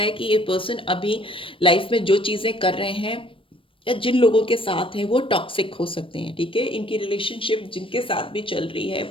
कि ये पर्सन अभी लाइफ में जो चीज़ें कर रहे हैं, या जिन लोगों के साथ हैं, वो टॉक्सिक हो सकते हैं। ठीक है, इनकी रिलेशनशिप जिनके साथ भी चल रही है,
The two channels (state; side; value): late; right; 0.25 ms